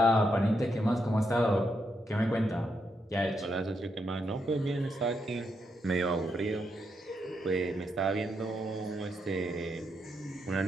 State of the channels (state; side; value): normal; both; correlation 0.80